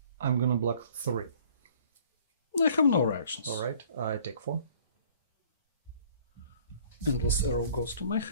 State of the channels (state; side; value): inverted; both; correlation -0.54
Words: I'm gonna block 3. I have no reactions. Alright, I take 4. Endless Arrow goes to my